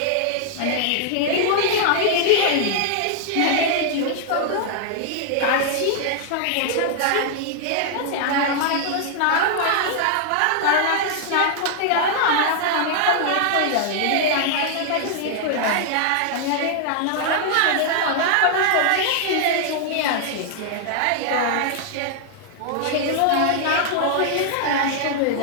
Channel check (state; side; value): different; both; correlation 0.00